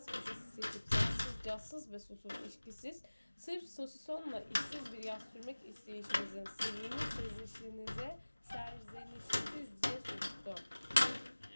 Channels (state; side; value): inverted; both; correlation -1.00